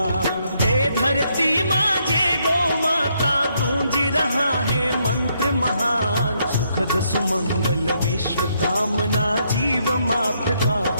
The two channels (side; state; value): both; inverted; correlation -0.74